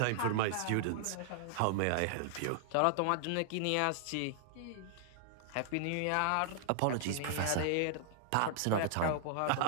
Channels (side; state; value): both; different; correlation -0.01